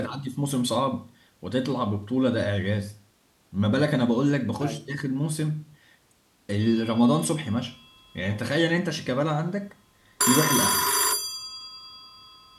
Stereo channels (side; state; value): both; identical; correlation 1.00